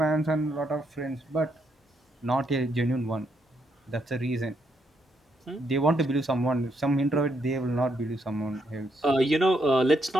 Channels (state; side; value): normal; both; correlation 0.77